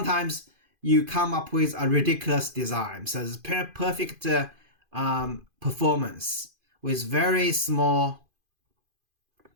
you come up with a ridiculous design. So it's perfect performance with very small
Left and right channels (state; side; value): late; left; 2.5 ms